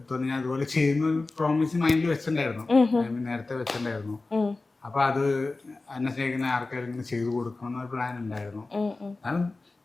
ഞാൻ അതുപോലെ ചെയ്യുന്ന പ്രോമിസ് മൈൻഡിൽ വെച്ചിട്ടുണ്ടായിരുന്നു, നേരത്തെ വെച്ചിട്ടുണ്ടായിരുന്നു. അപ്പൊ അത് എന്നെ സ്നേഹിക്കുന്ന ആർക്കാരും ഇങ്ങനെ ചെയ്തു കൊടുക്കണം എന്നൊരു പ്ലാൻ ഉണ്ടായിരുന്നു. ഞാൻ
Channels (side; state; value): right; quieter; 3.4 dB